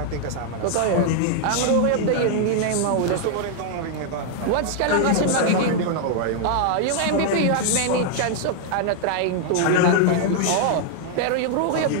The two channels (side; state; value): both; different; correlation 0.00